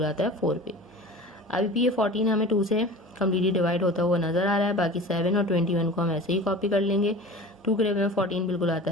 आता है 4 पे। अभी भी ये 14 हमें 2 से कम्प्लीटली डिवाइड होता हुआ नजर आ रहा है, बाकी 7 और 21 को हम ऐसे ही कॉपी कर लेंगे। 2 के टेबल में 14 बिल्कुल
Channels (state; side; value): normal; both; correlation 0.37